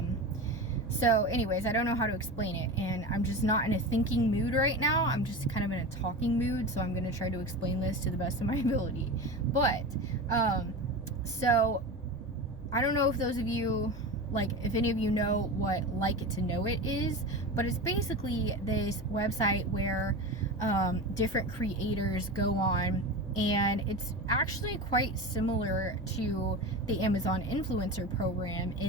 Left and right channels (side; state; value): both; normal; correlation 0.26